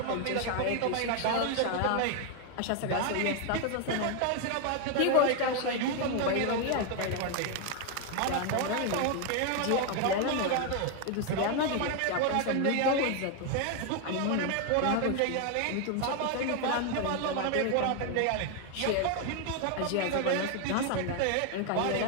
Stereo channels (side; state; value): both; different; correlation 0.01